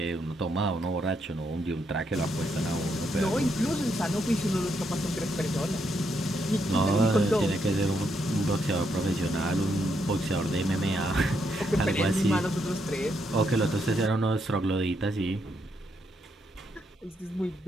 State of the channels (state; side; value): normal; both; correlation 0.78